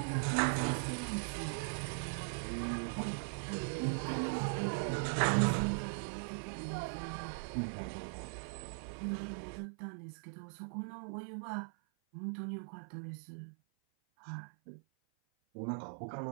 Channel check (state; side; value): silent; left; 51 dB below the other